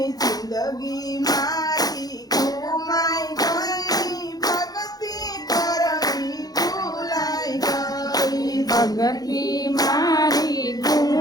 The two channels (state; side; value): late; right; 0.19 ms